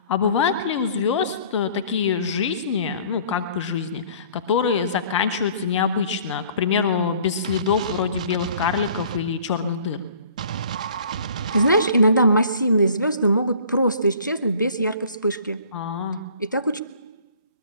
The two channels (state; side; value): inverted; both; correlation -0.52